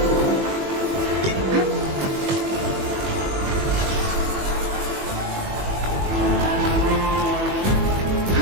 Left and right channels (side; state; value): left; late; 21 ms